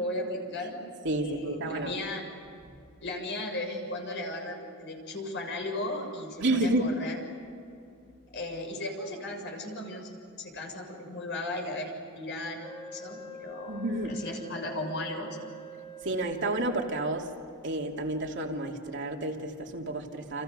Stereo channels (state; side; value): normal; both; correlation 0.15